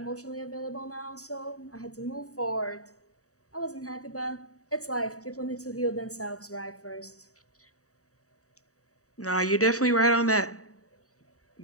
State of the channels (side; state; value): right; late; 0.65 ms